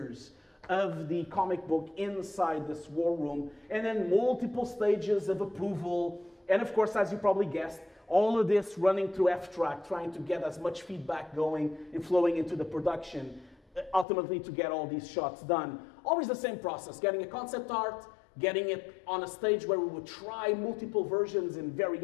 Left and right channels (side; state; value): right; drops out; at 14.1 s